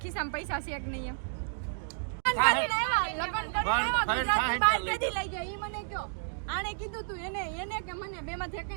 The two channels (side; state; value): left; silent; digital silence